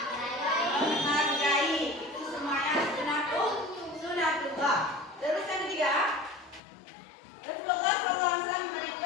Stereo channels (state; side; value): drops out; right; at 6.6 s